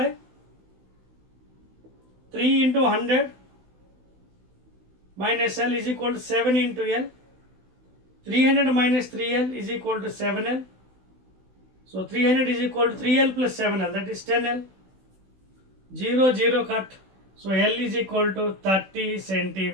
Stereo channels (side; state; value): left; late; 16 ms